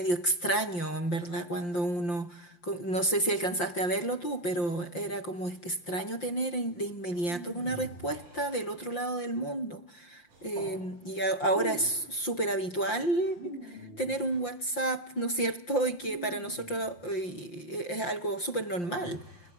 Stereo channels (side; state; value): right; late; 5.7 ms